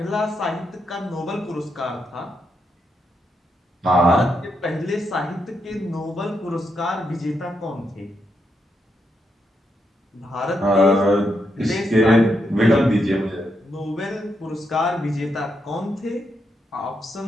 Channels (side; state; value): both; normal; correlation 0.81